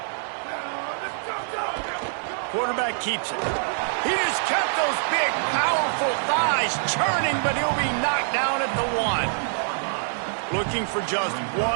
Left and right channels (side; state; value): left; silent; digital silence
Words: Quarterback keeps it. He just kept those big, powerful thighs churning, but he'll be knocked down at the 1. Looking for just